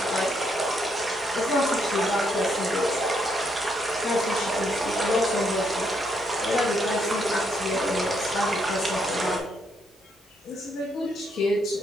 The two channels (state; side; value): normal; both; correlation 0.75